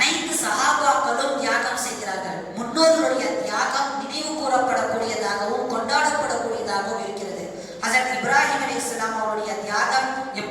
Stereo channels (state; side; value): identical; both; correlation 1.00